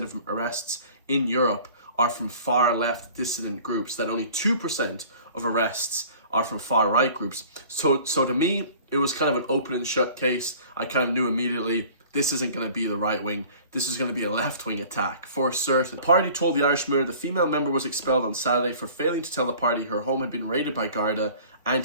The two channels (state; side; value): inverted; both; correlation -0.47